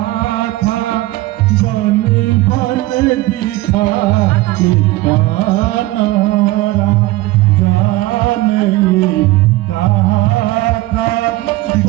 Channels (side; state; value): left; quieter; 18.6 dB